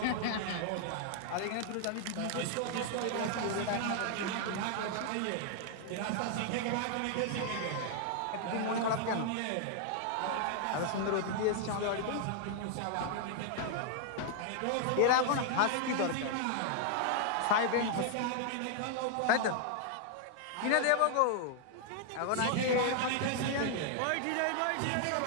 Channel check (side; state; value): both; different; correlation 0.00